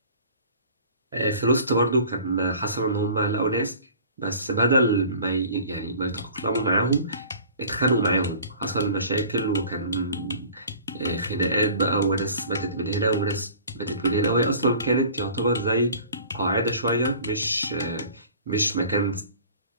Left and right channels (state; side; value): inverted; both; correlation -0.46